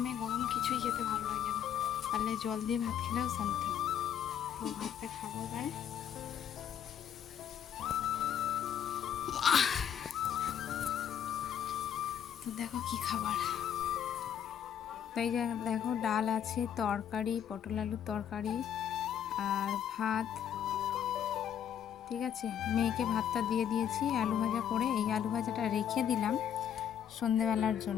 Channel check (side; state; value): right; quieter; 9.1 dB